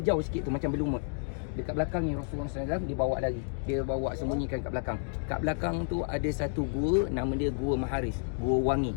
sikit tu macam berlumut. Dekat belakang ni Rasulullah SAW dibawa lagi. Dia bawa sembunyikan kat belakang. Kat belakang tu ada satu gua, nama dia Gua Maharis, Gua Wangi.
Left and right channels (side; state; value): right; silent; 57 dB below the other